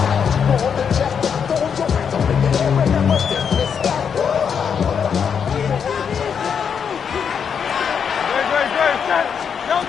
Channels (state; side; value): quieter; right; 7.1 dB